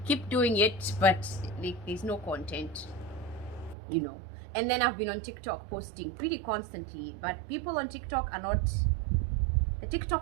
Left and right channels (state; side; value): drops out; left; at 3.8 s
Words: keep doing it, but like, there's no content, you know. And then I've been on TikTok posting pretty constantly, but people on TikTok are not, the